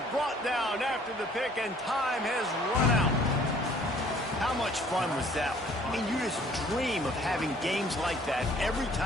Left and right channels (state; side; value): normal; both; correlation 0.57